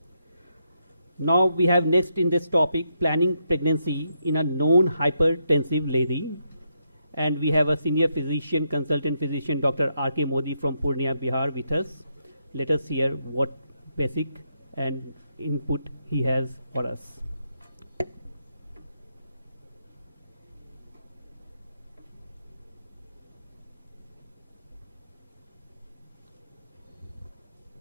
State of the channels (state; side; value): inverted; both; correlation -0.80